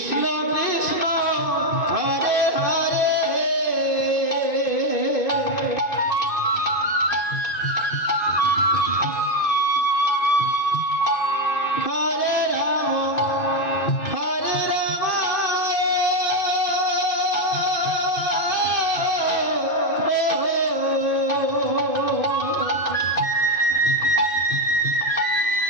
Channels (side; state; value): right; late; 2.5 ms